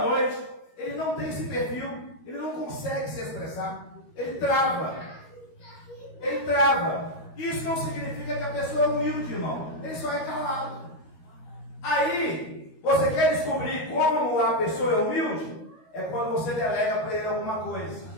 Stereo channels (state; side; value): late; right; 13 ms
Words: noite. Ele não tem esse perfil, ele não consegue se expressar, ele trava. Isso não significa que a pessoa é humilde, irmão, ele só é calado. Aí, você quer descobrir como a pessoa é humilde? É quando você delega para ele alguma coisa.